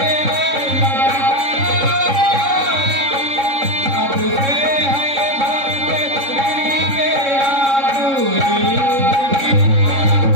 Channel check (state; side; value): late; left; 3.7 ms